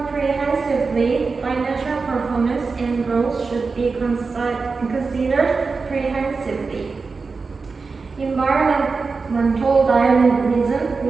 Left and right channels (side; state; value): left; quieter; 4.4 dB